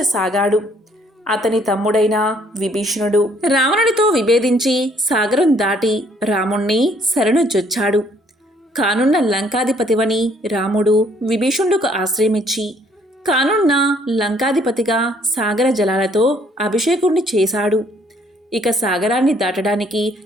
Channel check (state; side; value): normal; both; correlation 0.63